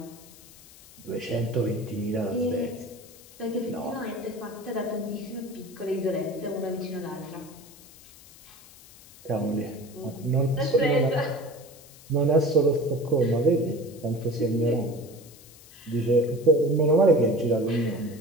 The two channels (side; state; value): left; noise; hiss, 21 dB below the sound